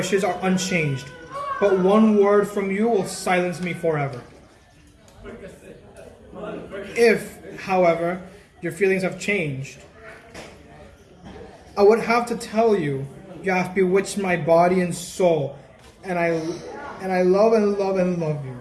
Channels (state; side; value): identical; both; correlation 1.00